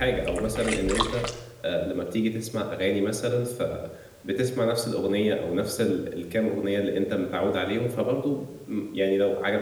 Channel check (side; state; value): both; identical; correlation 1.00